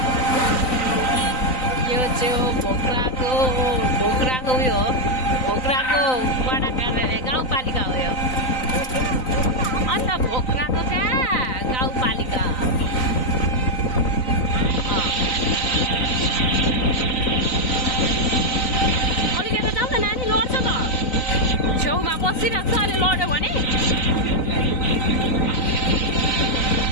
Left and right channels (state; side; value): late; right; 3.9 ms